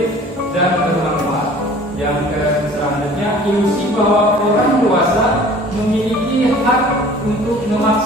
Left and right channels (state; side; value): normal; both; correlation 0.48